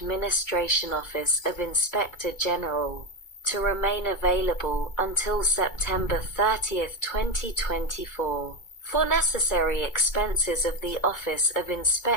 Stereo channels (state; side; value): late; right; 2.3 ms